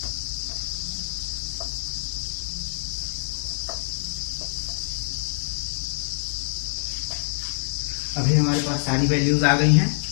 अभी हमारे पास सारी वैल्यूज आ गई हैं।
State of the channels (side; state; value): right; silent; digital silence